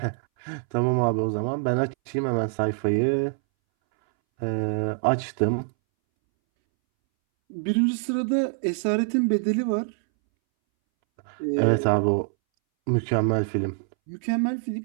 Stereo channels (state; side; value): silent; left; 62 dB below the other